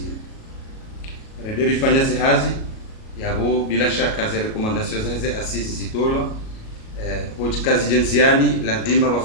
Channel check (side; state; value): right; late; 37 ms